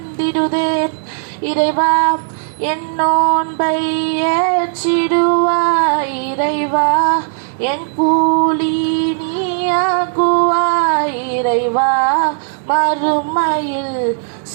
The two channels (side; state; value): left; silent; 69 dB below the other